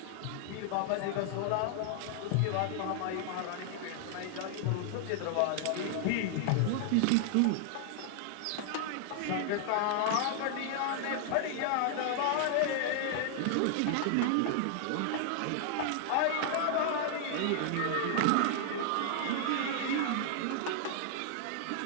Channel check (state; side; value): different; both; correlation 0.00